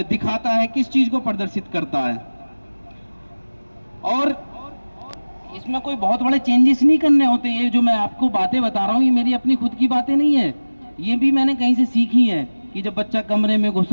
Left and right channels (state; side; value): inverted; both; correlation -1.00